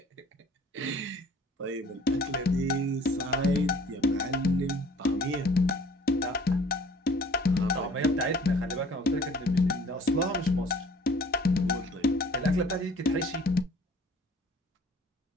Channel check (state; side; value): normal; both; correlation 0.51